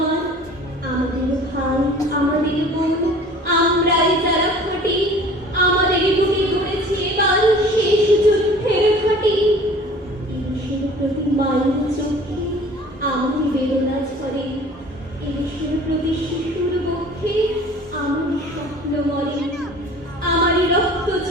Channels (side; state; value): both; normal; correlation 0.46